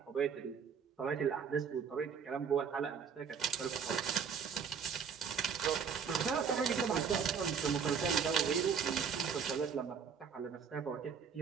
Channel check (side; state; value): left; quieter; 6.6 dB